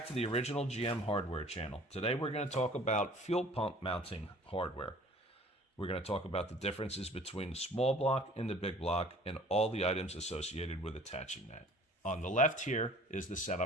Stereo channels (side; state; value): both; normal; correlation 0.50